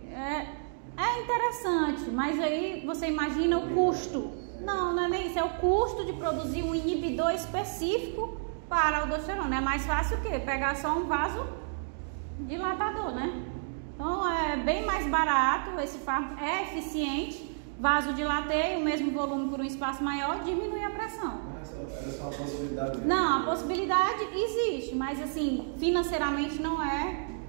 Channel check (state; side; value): silent; left; digital silence